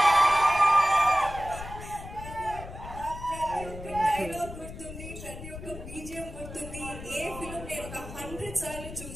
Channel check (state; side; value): noise; left; rumble, 12 dB below the sound